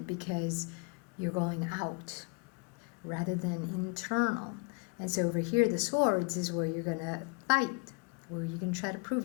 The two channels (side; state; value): right; quieter; 31.5 dB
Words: because you're going out rather than internal. And so over here, the swords is where you're going to fight, where you can try to prove